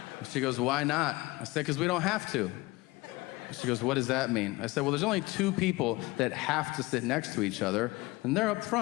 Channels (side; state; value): right; quieter; 21.8 dB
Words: She goes, why not? I said, because we don't have to. She goes, what does that mean? I said, well, there's only 2 people that have to sit next to each other, and they're up